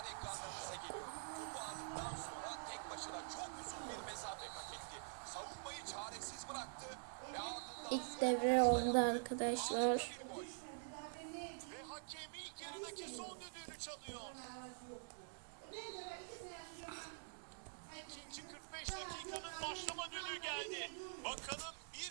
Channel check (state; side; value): silent; left; digital silence